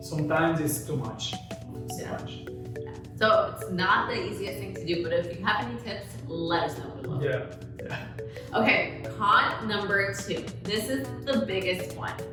it's too much. So it's not the easiest thing to do, but if you have any tips, let us know below. Yeah. Okay, con number 2. This is the biggest one.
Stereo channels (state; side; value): identical; both; correlation 1.00